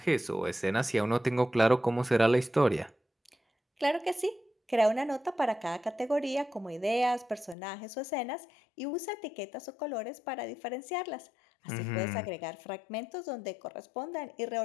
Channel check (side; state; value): right; drops out; at 7.6 s